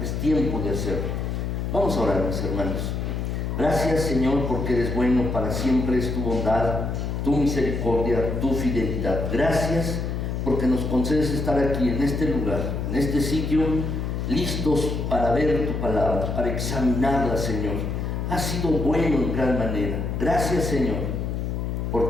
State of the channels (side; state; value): left; noise; hum, 2 dB below the sound